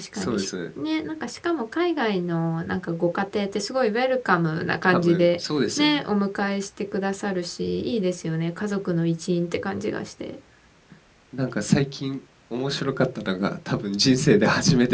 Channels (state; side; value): identical; both; correlation 1.00